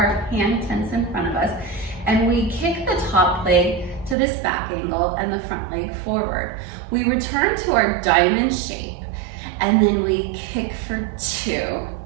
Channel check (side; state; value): left; drops out; at 4.2 s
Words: tense in front of us, and we kick the top leg to this back angle and the front leg forward. We return to our diamond shape, and then we kick for 2